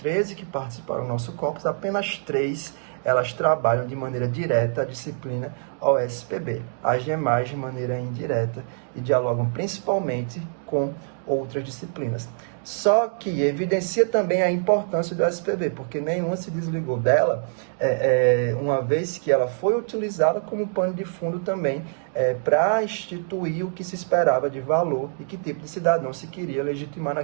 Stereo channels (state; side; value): silent; left; digital silence